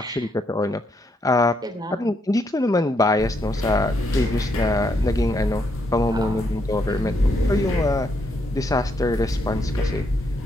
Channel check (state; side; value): normal; both; correlation 0.76